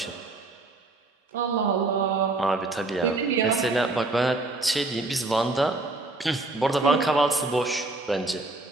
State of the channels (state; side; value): quieter; left; 3.0 dB